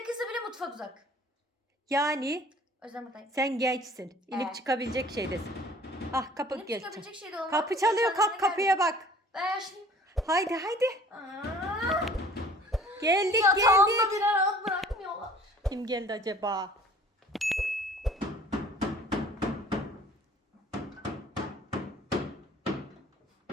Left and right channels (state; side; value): normal; both; correlation 0.51